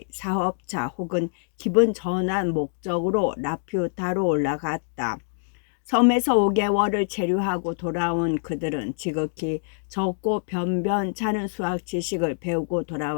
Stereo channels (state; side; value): silent; right; digital silence